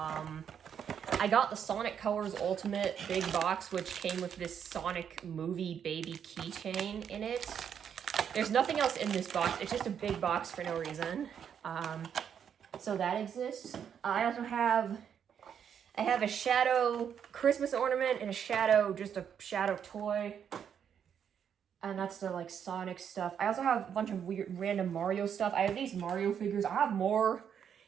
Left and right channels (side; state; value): left; quieter; 8.2 dB